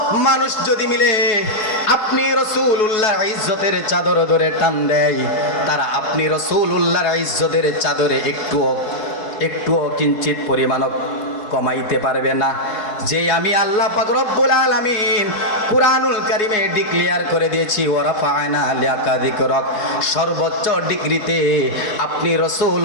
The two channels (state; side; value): late; right; 4.6 ms